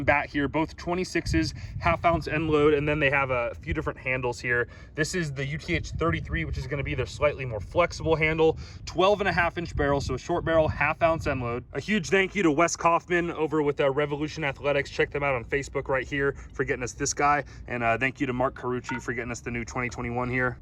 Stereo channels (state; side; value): identical; both; correlation 1.00